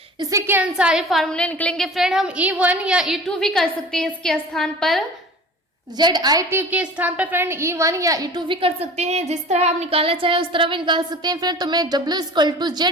इसी के अनुसार ये फार्मूले निकलेंगे फ्रेंड। हम E1 या E2 भी कर सकते हैं इसके स्थान पर, ZIT के स्थान पर फ्रेंड E1 या E2 भी कर सकते हैं। जिस तरह आप निकालना चाहे उस तरह भी निकाल सकते हैं फ्रेंड। तो मैं W इक्वल टू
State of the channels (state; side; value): normal; both; correlation 0.41